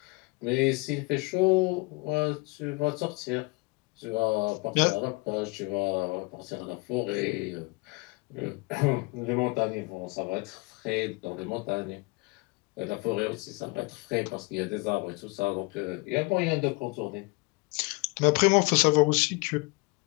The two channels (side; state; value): right; quieter; 26.9 dB